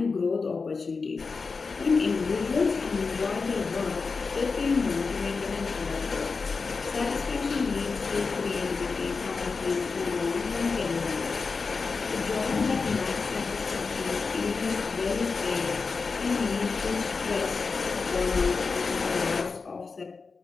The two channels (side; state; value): right; quieter; 4.6 dB